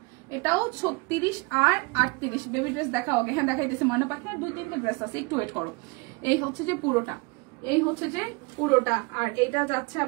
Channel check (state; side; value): quieter; left; 27.9 dB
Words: এটাও 36 আর 38। বেবি ড্রেস দেখা হবে, হ্যাঁ দেখাইতেছে ময়না পাখনা, 2-3টা ড্রেস আছে, একটু ওয়েট করো। এই হচ্ছে যে পুরোটা, এই হচ্ছে যে পুরোটা, আর এইটা যাচ্ছে